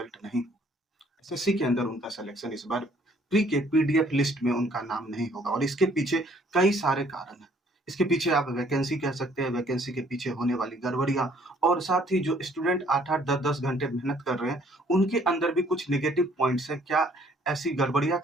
नहीं एसएससी के अंदर उनका सिलेक्शन इस बार प्री के पीडीएफ लिस्ट में उनका नाम नहीं होगा और इसके पीछे कई सारे कारण हैं। इसके पीछे आप वैकेंसी कह सकते हैं, वैकेंसी के पीछे होने वाली गड़बड़ियाँ और साथ ही जो स्टूडेंट 8-8 10-10 घंटे मेहनत कर रहे हैं, उनके अंदर भी कुछ नेगेटिव पॉइंट्स हैं। क्या ऐसी गड़बड़ियाँ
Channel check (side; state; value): both; normal; correlation 0.61